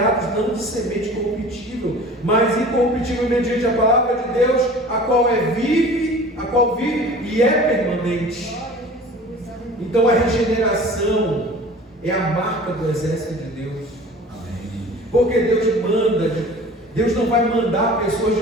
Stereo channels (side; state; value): both; normal; correlation 0.43